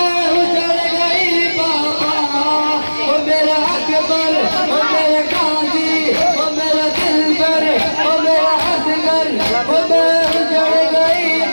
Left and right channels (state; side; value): inverted; both; correlation -1.00